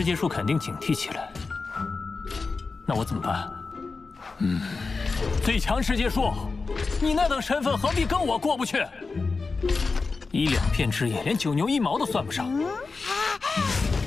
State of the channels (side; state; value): right; quieter; 4.2 dB